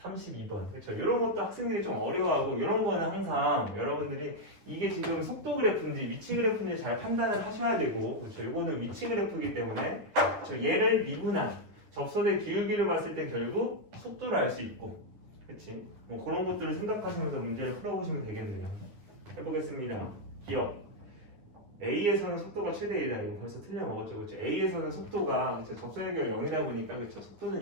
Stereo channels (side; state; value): left; late; 9.9 ms